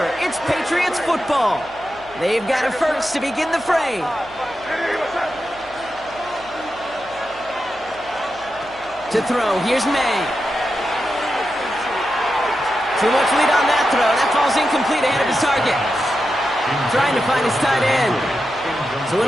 It's Patriots football. They've got a first to begin the fray. To throw, here's May. Too much lead on that throw. That falls incomplete ahead of his target. Trying to find his tight end. So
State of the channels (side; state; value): right; noise; hum, 24 dB below the sound